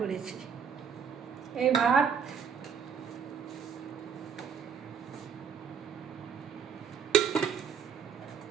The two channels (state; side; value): quieter; left; 6.9 dB